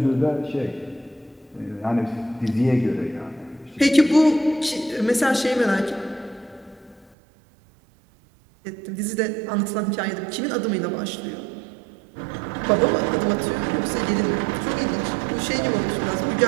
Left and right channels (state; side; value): drops out; left; at 7.2 s